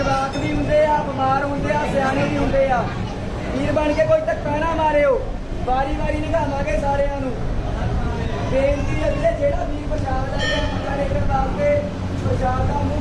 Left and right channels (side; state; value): both; identical; correlation 1.00